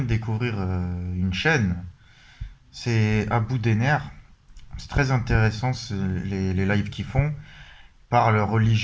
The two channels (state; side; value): identical; both; correlation 1.00